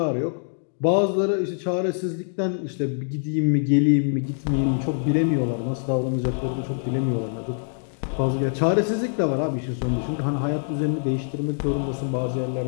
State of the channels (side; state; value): right; silent; digital silence